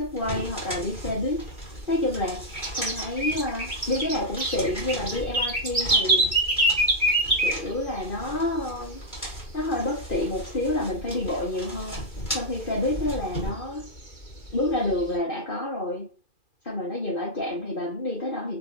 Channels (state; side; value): late; right; 2.4 ms